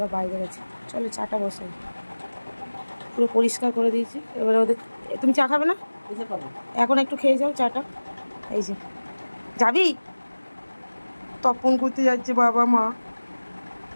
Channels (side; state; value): both; inverted; correlation -1.00